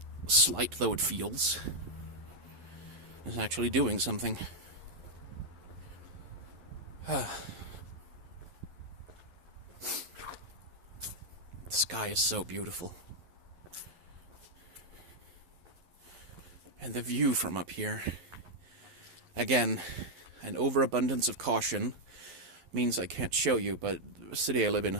slight though it feels, is actually doing something. The sky is so beautiful. And the view from up here, again, an overabundance of caution means I can't show you, but the city I live in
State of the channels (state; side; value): late; left; 11 ms